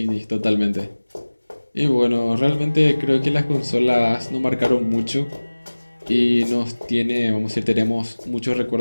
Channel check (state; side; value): inverted; both; correlation -1.00